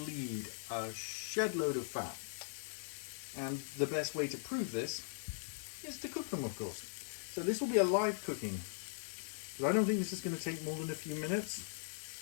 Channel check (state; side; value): silent; right; 51 dB below the other